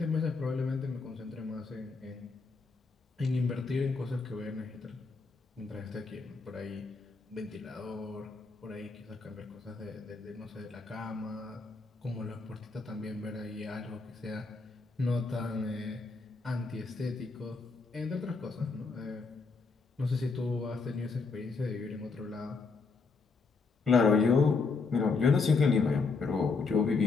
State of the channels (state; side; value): quieter; right; 4.4 dB